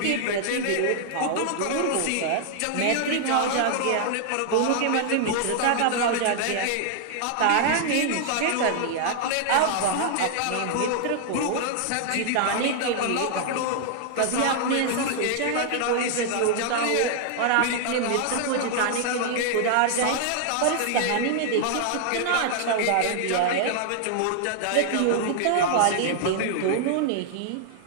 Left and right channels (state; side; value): different; both; correlation -0.01